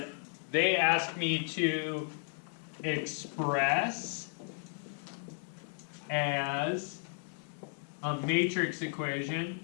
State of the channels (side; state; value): right; silent; 55 dB below the other